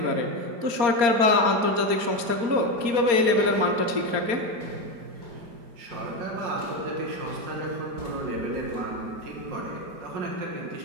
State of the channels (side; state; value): left; late; 4.3 ms